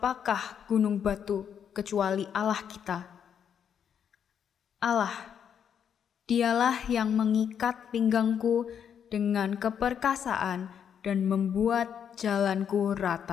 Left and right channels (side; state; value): right; quieter; 8.2 dB